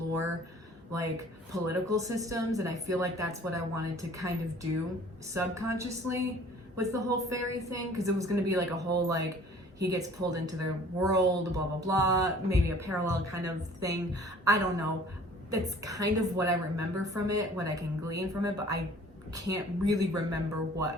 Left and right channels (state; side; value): normal; both; correlation 0.51